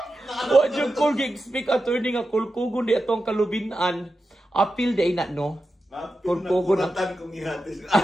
Wa jud ko gi-speak attorney nga kulkugon di atong kalubinan. Apil di na no. Kulkugon ang kong ihatis.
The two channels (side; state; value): both; normal; correlation 0.91